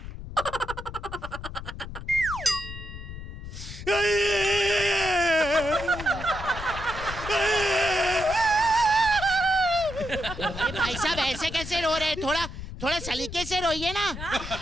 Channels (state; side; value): noise; left; rumble, 10 dB below the sound